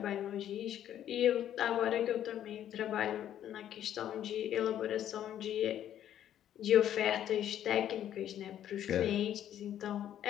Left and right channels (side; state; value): right; quieter; 10.9 dB